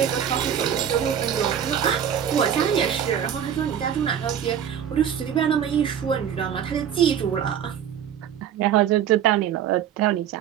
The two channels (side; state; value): left; quieter; 9.2 dB